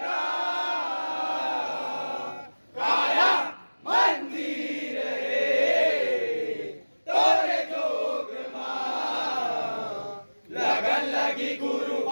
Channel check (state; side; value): inverted; both; correlation -1.00